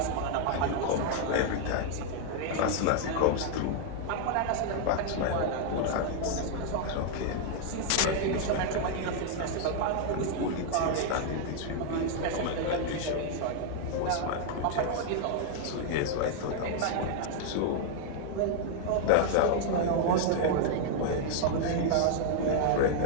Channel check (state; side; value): different; both; correlation 0.00